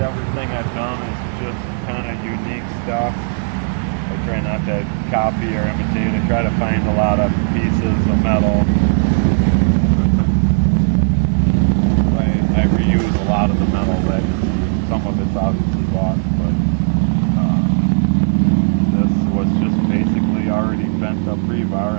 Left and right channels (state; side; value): silent; left; digital silence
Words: everything I've done is just kind of unique stuff. I try not to copy or imitate. I try to find a lot of pieces of metal. I reuse a lot of the metal that some of it's obviously bought, but this was just basically already bent up rebar,